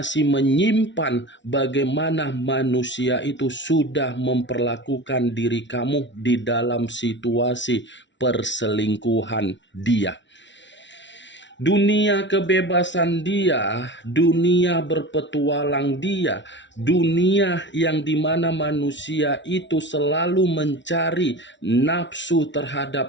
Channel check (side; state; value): right; late; 0.53 ms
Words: menyimpan bagaimana manusia itu sudah memperlakukan diri kamu di dalam situasi perselingkuhan dia. Dunia kebebasan dia, dunia berpetualang dia, dunia yang dimana manusia itu selalu mencari nafsu